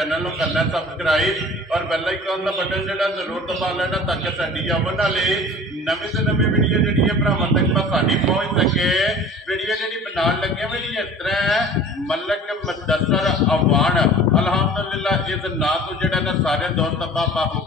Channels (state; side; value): normal; both; correlation 0.43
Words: नूं करना सब्सक्राइब और बेल आइकन का बटन जिहड़ा जरूर दबा लेना ताकि साडी आवन वाली नवीं से नवीं वीडियो जिहड़ी है भरावां तक आसानी पहुंच सके। वीडियो जिहड़ी बनाउण लगे वीडियो इस तरह है मलक मुदस्सर अवान अल्हम्दुलिल्लाह इस नां तो जिहड़ा ना सारे दोस्त